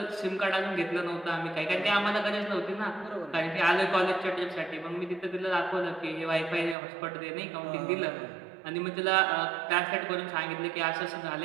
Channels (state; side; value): drops out; left; at 6.8 s